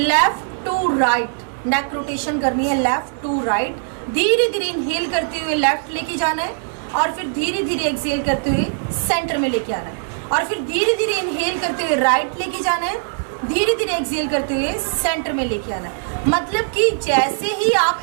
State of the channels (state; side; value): silent; left; digital silence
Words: to right neck rotation करनी है। लेफ्ट टू राइट धीरे धीरे इनहेल करते हुए लेफ्ट लेके जाना है और फिर धीरे धीरे एक्सहेल करते हुए सेंटर में लेके आना है और फिर धीरे धीरे इनहेल करते हुए राइट लेके जाना है, धीरे धीरे एक्सहेल करते हुए सेंटर में लेके आना है। मतलब कि जैसे ही आप